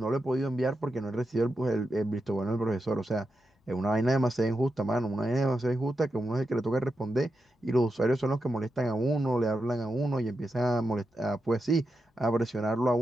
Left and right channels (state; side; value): normal; both; correlation 0.88